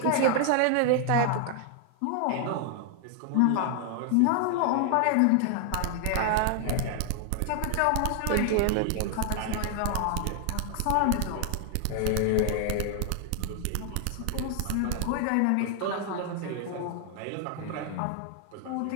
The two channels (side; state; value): both; different; correlation 0.00